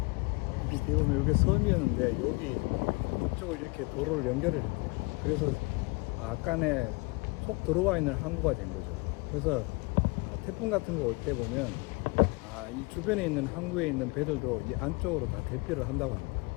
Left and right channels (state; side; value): quieter; right; 27.1 dB